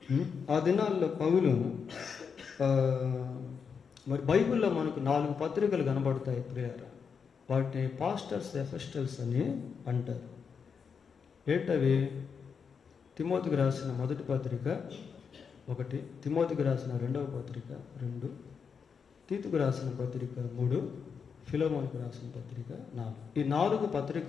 ఆ దినాల్లో పౌలు ఆ, మరి బైబిల్లో మనకు 4 పత్రికలు కనబడతాయి ప్రియారా. వాటిని పాస్టర్స్ ఎఫెస్టల్స్ అని అంటారు. ఏంటవి? తిమోతికి రాసిన మొదటి పత్రిక 1, తిమోతికి రాసిన 2వ పత్రిక 2, తీతుకు రాసిన పత్రిక 3, ఫిలోమోనుకు రాసిన పత్రిక 4. ఈ 4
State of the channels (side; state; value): right; quieter; 6.2 dB